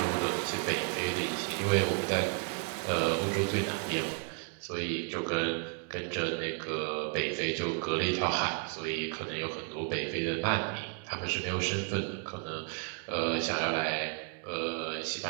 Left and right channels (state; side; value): quieter; left; 36.2 dB